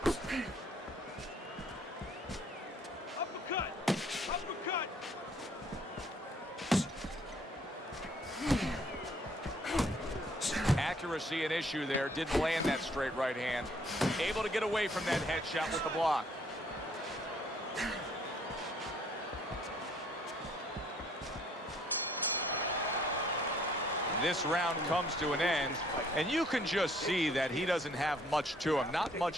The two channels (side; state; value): both; normal; correlation 0.62